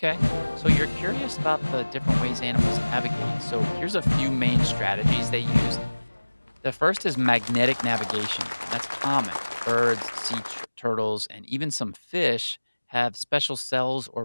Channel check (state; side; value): inverted; both; correlation -1.00